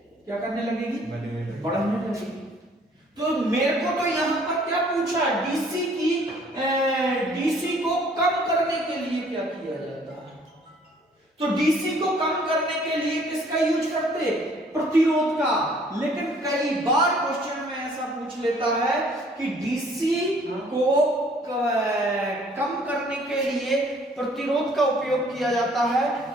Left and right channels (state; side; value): normal; both; correlation 0.58